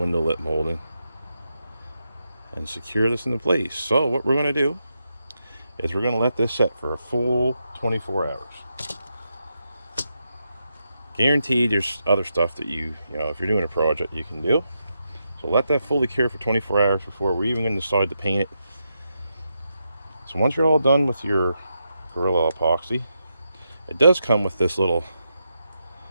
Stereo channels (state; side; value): inverted; both; correlation -0.85